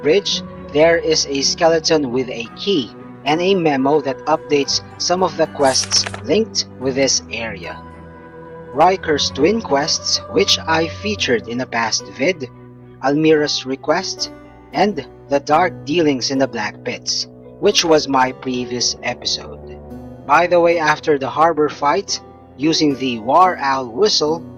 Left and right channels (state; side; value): identical; both; correlation 1.00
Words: there is a skeleton with a key and a memo that updates some of the quests linked with this area. Riker's twin quests, which I featured in a past vid, Almira's request, and the dark dealings in the Blackpits, which was my previous episode. By the way, after the harbor fight, using the War Owl whistle,